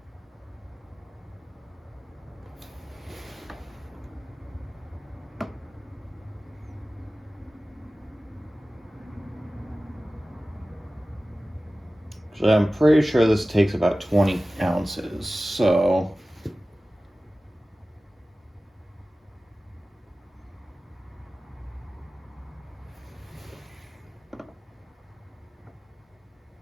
So I'm pretty sure this takes about 20 ounces, so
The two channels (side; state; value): both; normal; correlation 0.96